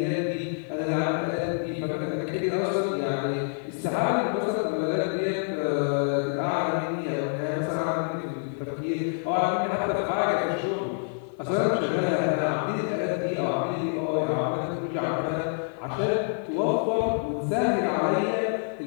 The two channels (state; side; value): silent; right; 58 dB below the other